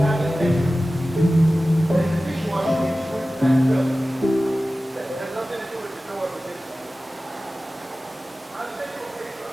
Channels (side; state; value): both; normal; correlation 0.96